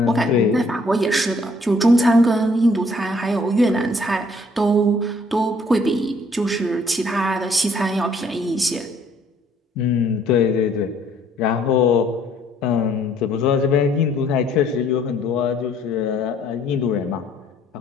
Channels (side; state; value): both; normal; correlation 0.62